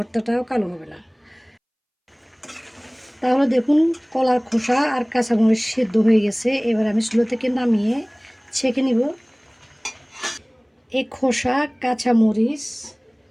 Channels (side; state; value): both; identical; correlation 1.00